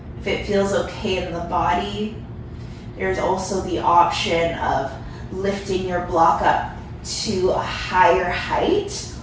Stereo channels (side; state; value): both; identical; correlation 1.00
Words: If it feels okay in the body, there's also the option of lifting your block up to a higher height,